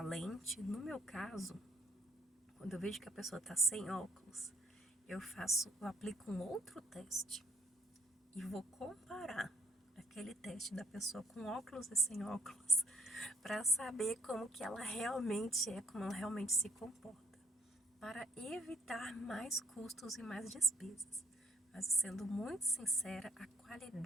No meu caso, quando eu vejo que a pessoa está sem óculos, eu aplico um outro teste e vou comparar aquele teste da pessoa com óculos e sem óculos para saber como que ela realmente é, como ela realmente se comporta, para evitar mais custos e mais despesas. Mas sendo muito sincera, a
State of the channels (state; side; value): normal; both; correlation 0.66